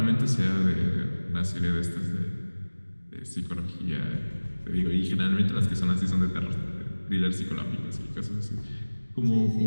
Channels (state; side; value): inverted; both; correlation -1.00